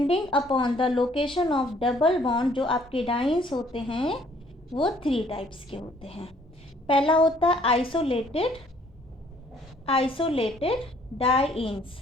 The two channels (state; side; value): normal; both; correlation 0.61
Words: upon the location of double bond जो आपके डाइन्स होते हैं वो थ्री टाइप्स के होते हैं। पहला होता है आइसोलेटेड डाइन्स।